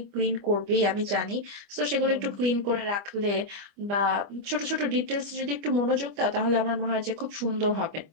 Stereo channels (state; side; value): late; left; 25 ms